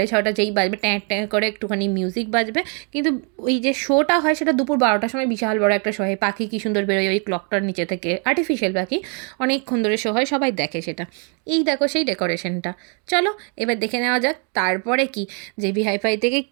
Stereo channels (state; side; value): quieter; left; 38.2 dB